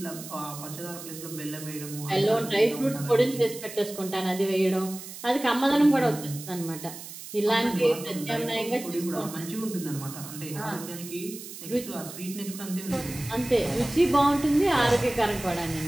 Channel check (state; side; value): noise; right; hiss, 12 dB below the sound